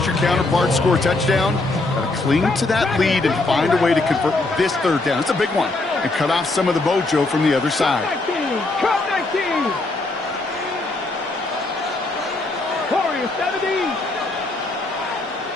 your counterpart score a touchdown. Got to cling to that lead and find a way to convert this 3rd down. It's a big one. And cut off some of the mojo from the other side. 19. 19. Warriors 70.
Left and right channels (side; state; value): right; quieter; 3.1 dB